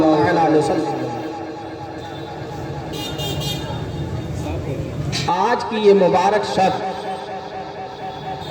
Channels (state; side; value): identical; both; correlation 1.00